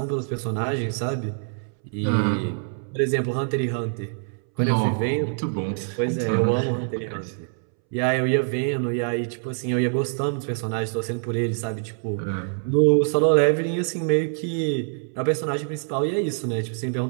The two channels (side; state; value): left; silent; 62 dB below the other